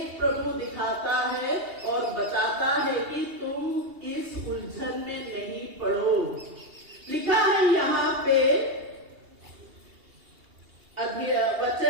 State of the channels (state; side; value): late; left; 2.8 ms